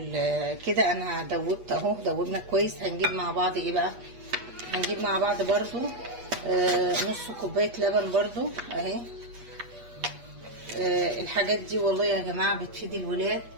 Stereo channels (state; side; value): late; left; 8.3 ms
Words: كده. انا دوبت اهو، دوبنا كويس. هنجيب مع بعض ايه بقى؟ هنجيب مع بعض برضو نص كوبايه لبن برضو اهي. الحاجات دي والله يا جماعه بتفيد الولاد،